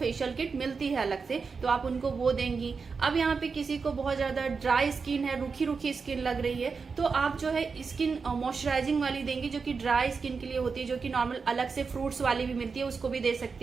किट मिलती है अलग से, तो आप उनको वो देंगी। अब यहाँ पे किसी को बहुत ज्यादा ड्राई स्किन है, रूखी रूखी स्किन लग रही है, तो आप जो है स्किन मॉइस्चराइजिंग वाली देंगी जो कि ड्राई स्किन के लिए होती है, जो कि नॉर्मल अलग से फ्रूट्स वाली भी मिलती है, उसको भी दे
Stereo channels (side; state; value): left; quieter; 5.1 dB